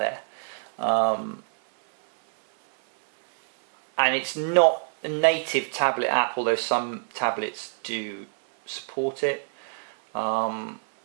And it's not a native tablet app, although some tablets do support it. You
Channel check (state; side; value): silent; left; 61 dB below the other